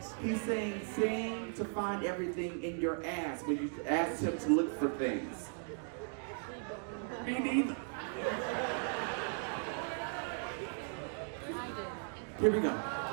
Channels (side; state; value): left; silent; 53 dB below the other